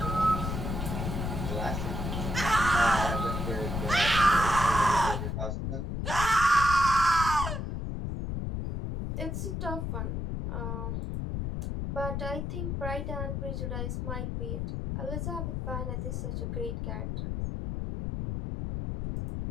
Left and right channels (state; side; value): noise; left; rumble, 3 dB below the sound